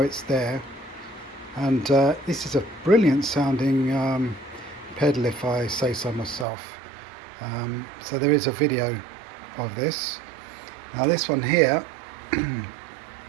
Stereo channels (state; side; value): drops out; left; at 6.5 s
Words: there. And this is a brilliant sounding pedal, if I say so myself. So there is a video of this. Now this one here,